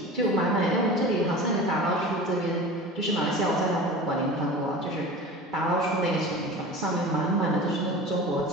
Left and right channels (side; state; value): both; normal; correlation 0.35